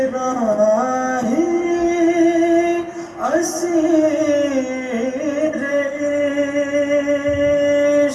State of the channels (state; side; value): identical; both; correlation 1.00